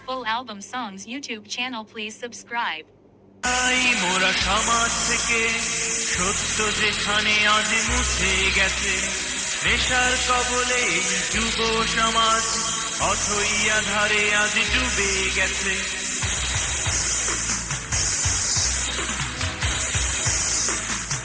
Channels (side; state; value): both; identical; correlation 1.00